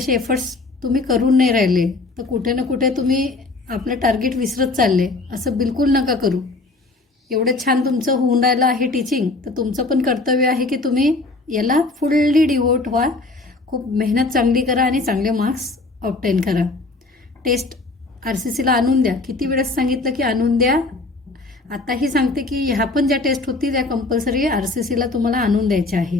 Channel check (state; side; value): quieter; right; 3.3 dB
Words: एफर्ट्स तुम्ही करून नाही राहिले तर कुठे ना कुठे तुम्ही आपलं टार्गेट विसरत चालले. असं बिलकुल नका करू. एवढं छान तुमचं होऊन राहिलं आहे टीचिंग, तर तुमचं पण कर्तव्य आहे की तुम्ही याला फुल्ली डिवोट व्हा, खूप मेहनत चांगली करा आणि चांगले मार्क्स ऑब्टेन करा. टेस्ट RCCला आणून द्या. किती वेळेस सांगितलं की आणून द्या. आताही सांगते की ह्या पण ज्या टेस्ट होतील त्या कंपल्सरी RCCला तुम्हाला आणून द्यायच्या